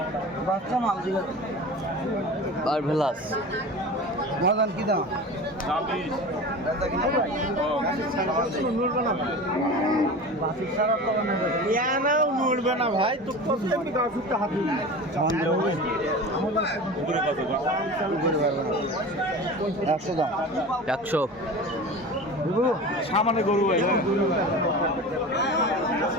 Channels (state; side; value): normal; both; correlation 0.33